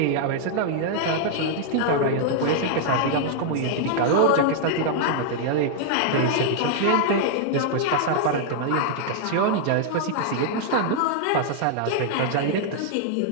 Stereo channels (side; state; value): both; different; correlation -0.01